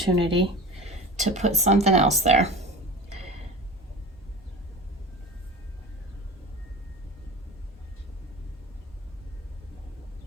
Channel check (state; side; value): normal; both; correlation 0.34